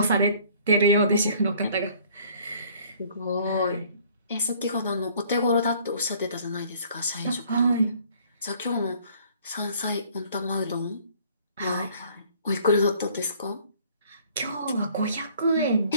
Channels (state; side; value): inverted; both; correlation -0.56